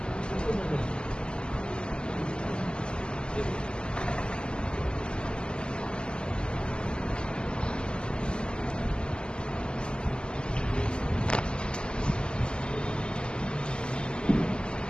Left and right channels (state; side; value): late; right; 0.049 ms